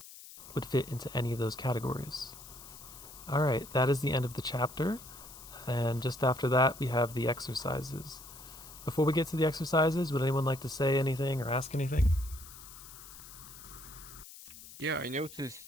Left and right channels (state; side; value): noise; left; hiss, 16 dB below the sound